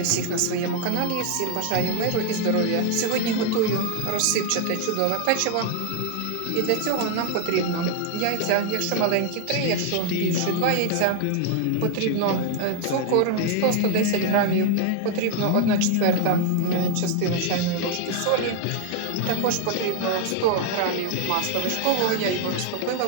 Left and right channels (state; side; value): different; both; correlation 0.01